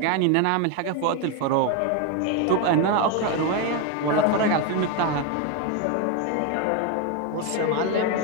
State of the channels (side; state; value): both; different; correlation 0.01